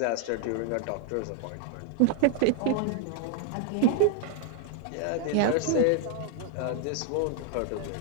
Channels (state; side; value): different; both; correlation 0.00